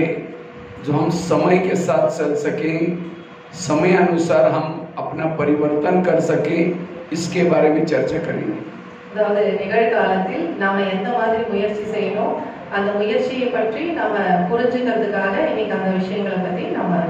जो हम समय के साथ चल सकें, समय अनुसार हम अपना परिवर्तन कर सकें, इसके बारे में चर्चा करेंगे। அதாவது நிகழ்காலத்தில் நாம எந்த மாதிரி முயற்சி செய்யணும், அந்த முயற்சியை பற்றி நாம புரிஞ்சுக்கிறதுக்காக இன்னைக்கு அந்த விஷயங்களை பத்தி நாம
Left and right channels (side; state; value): both; identical; correlation 1.00